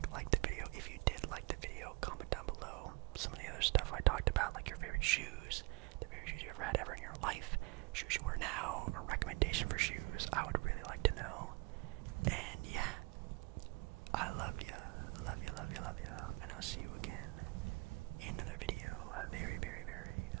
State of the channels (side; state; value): left; quieter; 28.6 dB